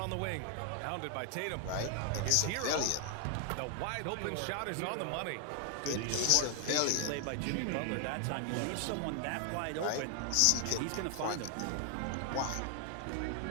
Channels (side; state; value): both; different; correlation 0.00